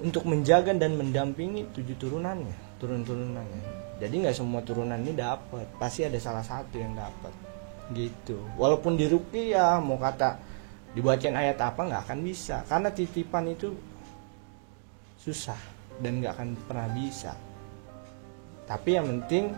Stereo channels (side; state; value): left; silent; digital silence